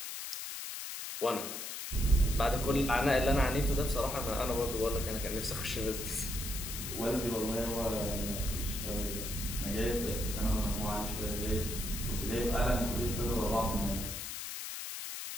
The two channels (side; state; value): left; noise; hiss, 6 dB below the sound